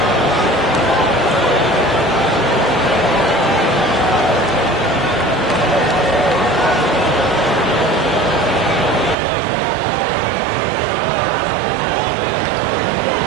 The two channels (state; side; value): drops out; left; at 9.2 s